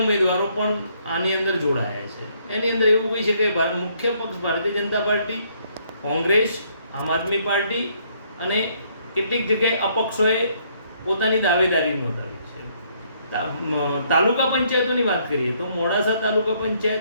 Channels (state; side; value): inverted; both; correlation -0.68